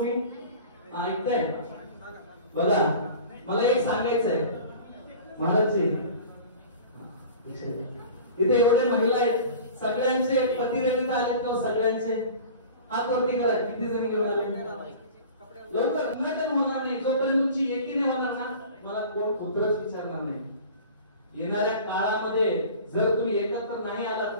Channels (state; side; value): inverted; both; correlation -0.41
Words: ऐकताय? बघा मला एक सांगायचं आहे महाराजजी, इथे एवढे महिला आहेत सगळ्यांचे पती रविता आलेत का? सगळ्यांचे हात वरती करा. किती जणी घेऊन आले? लवकर नाटक होणार नाही जोपर्यंत तुमची एकी नाही होणार ना मला कोण पुत्रच विचारणार नाही. येणाऱ्या काळामध्ये जर तुम्ही एकत्र नाही आलात